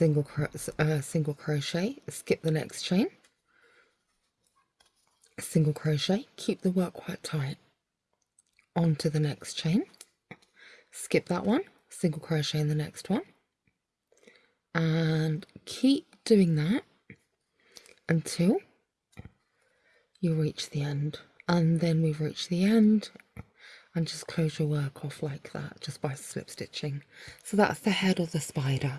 crochet, skip the next chain, single crochet, keep the work quite tight, onto the next chain, skip that one, single crochet in the next one, and keep doing that until you reach the end. And then we've reached the end, and just close your work off like that just by slip stitching. So that's the head of the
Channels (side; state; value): both; identical; correlation 1.00